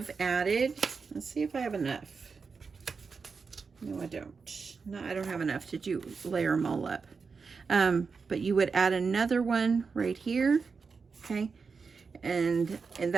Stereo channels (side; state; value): left; quieter; 5.1 dB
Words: added, let's see if I have enough. No, I don't. No, I don't have enough to layer them all up. But you would add another one right here, okay? And